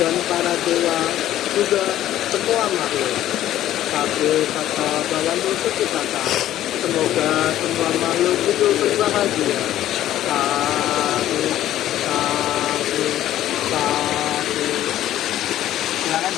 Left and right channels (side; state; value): right; quieter; 12.9 dB